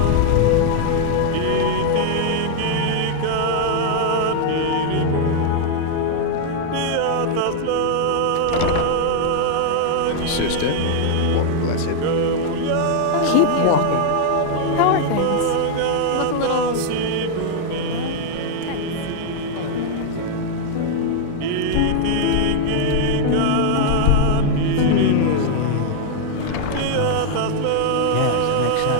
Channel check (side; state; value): both; different; correlation 0.00